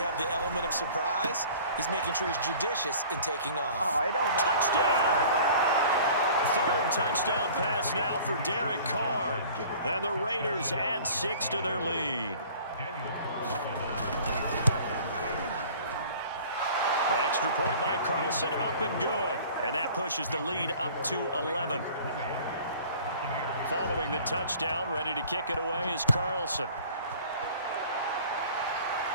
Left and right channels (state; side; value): inverted; both; correlation -0.47